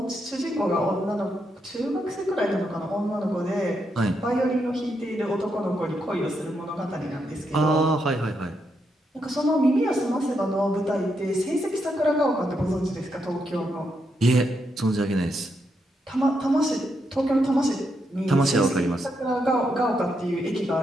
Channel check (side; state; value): both; normal; correlation 0.81